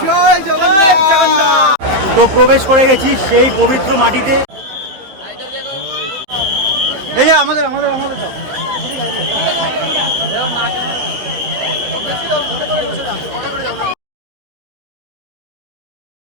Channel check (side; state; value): left; late; 16 ms